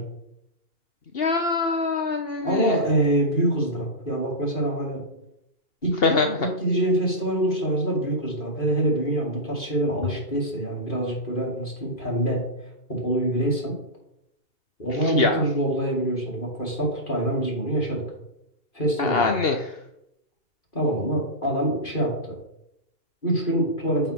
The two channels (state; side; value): late; right; 2.5 ms